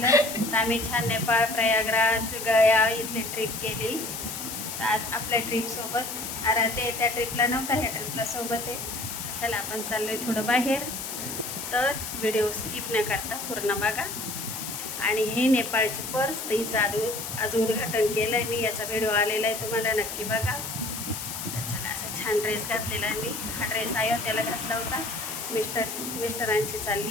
तर आम्ही छान नेपाळ, प्रयागराज, गया इथली ट्रिप केली. तर आज आपल्या ट्रिपसोबत आराध्य त्या ट्रिपला नव्हता, ह्या ट्रिपला सोबत आहे. चला आपण चाललो आहे थोडं बाहेर, तर व्हिडिओ स्किप न करता पूर्ण बघा. आणि हे नेपाळची पर्स, तिचं आज उद्घाटन केलं आहे मी, याचा व्हिडिओ आलेला आहे, तुम्हाला नक्की बघा. तर चला, असा छान ड्रेस घातलेला आहे मी. हा ड्रेस अयोध्येला घातला होता. मिस्टरांची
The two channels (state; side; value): noise; left; hiss, 6 dB below the sound